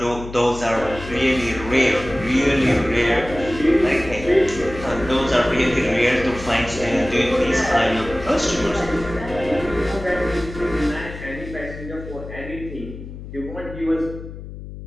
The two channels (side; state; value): left; noise; hum, 12 dB below the sound